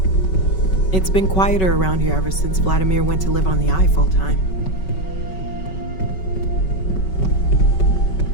It's been quieter around here ever since Vladimir went to live on the Eye full time.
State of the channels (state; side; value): late; right; 5.3 ms